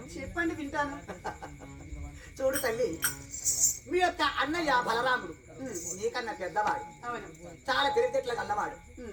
చెప్పండి వింటాను. చూడు తల్లి మీ యొక్క అన్నయ్య బలరాముడు నీకన్నా పెద్దవాడు అవును. చాలా తెలివితేటలు గల్లవాడు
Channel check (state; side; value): identical; both; correlation 1.00